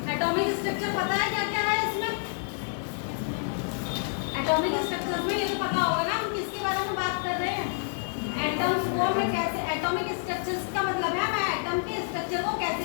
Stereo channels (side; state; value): right; silent; digital silence